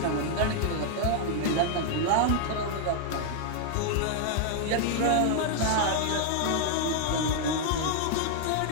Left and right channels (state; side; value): different; both; correlation 0.00